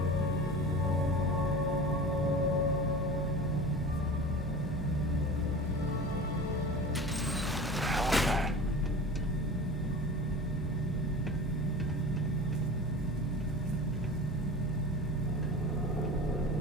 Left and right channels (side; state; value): both; normal; correlation 0.34